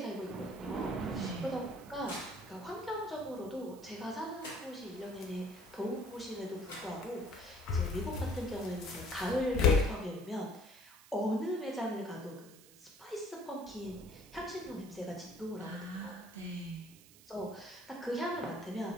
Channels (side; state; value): right; noise; hiss, 21 dB below the sound